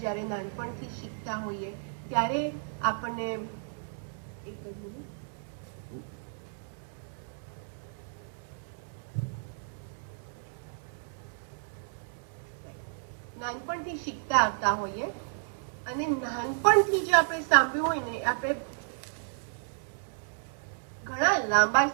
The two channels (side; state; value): left; silent; digital silence